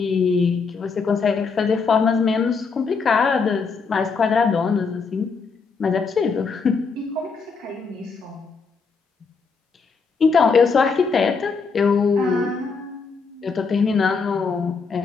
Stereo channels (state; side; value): quieter; right; 5.0 dB